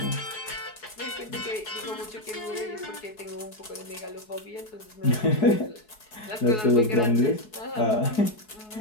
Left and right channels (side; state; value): right; late; 4.7 ms